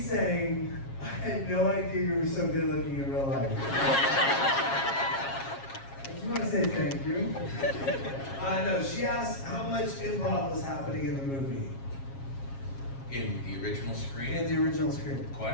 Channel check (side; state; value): right; late; 7.4 ms